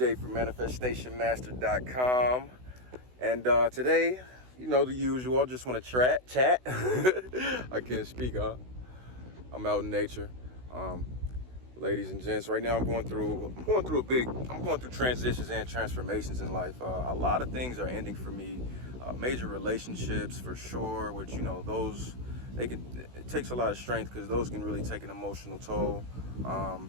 from ManifestationMaster.com. And today, you know the usual. I just want to chat. I can't speak, huh? I'm out in nature. Ladies and gents, right now I'm going through transitions and transformations in life. A lot of things are ending for me. Major relationships for sure, which, you know, it takes a lot of strength because those can really take an emotional toll.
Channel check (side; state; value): left; late; 16 ms